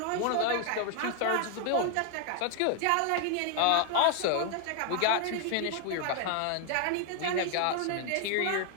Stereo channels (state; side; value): different; both; correlation 0.00